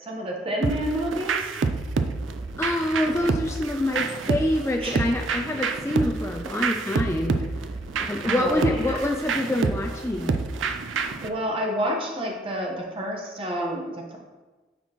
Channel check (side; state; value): both; normal; correlation 0.67